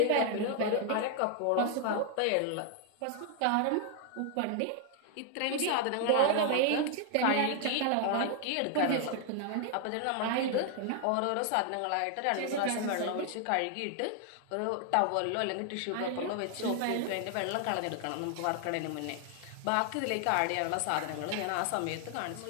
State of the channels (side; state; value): both; different; correlation 0.00